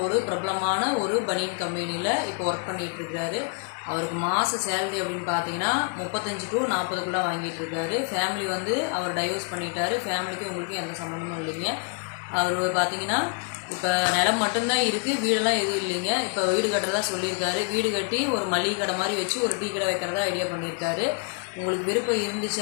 ஒரு பிரபலமான ஒரு பனியன் கம்பெனியில் இப்போ ஒர்க் பண்ணிகிட்ருக்காரு. அவருக்கு மாத சேலரி அப்படின்னு பார்த்தீங்கன்னா 35 to 40 வாங்கிட்டு இருக்காரு. ஃபேமிலி அவர் டைவர்ஸ் பண்ணிட்டாரு. ஃபேமிலிக்கு உங்களுக்கு எந்த சம்மந்தமும் இல்லைங்க. அவர் பார்த்தீங்கன்னா இப்போ நிலம் மட்டும்தான் இருக்குது, வீடெல்லாம் எதுவும் இல்லைங்க. இப்போ வீடு கட்டுறதா சொல்லியிருக்காரு. வீடு கட்டி ஒரு மளிகை கடை மாதிரி வச்சு ஒரு டீ கடை வைக்கிறதா ஐடியா பண்ணியிருக்காரு. உங்களுக்கு விருப்பம் இருந்துச்சு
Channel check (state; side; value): quieter; right; 38.5 dB